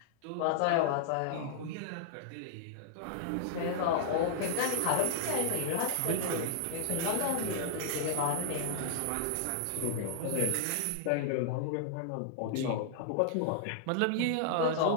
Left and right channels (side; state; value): both; different; correlation -0.01